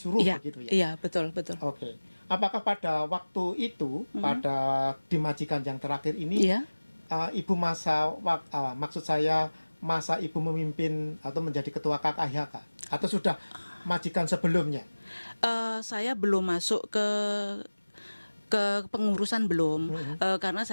Iya, begitu ya. iya, betul, betul. Oke. Apakah pada waktu itu, pada di majikan yang terakhir ini, Iya. ibu maksud saya masa ibu memimpin atau menjadi ketua KKIHK atau sudah majikan sebelumnya? Saya belum masuk ke pengurusan belum, karena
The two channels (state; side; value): inverted; both; correlation -1.00